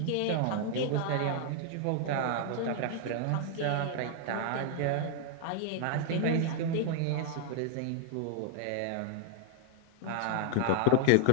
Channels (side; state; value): both; different; correlation 0.00